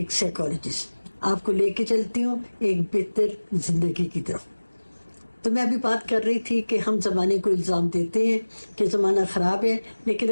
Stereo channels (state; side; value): inverted; both; correlation -1.00